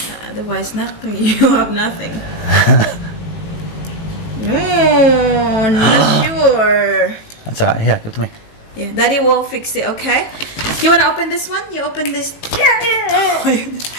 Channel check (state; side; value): late; right; 18 ms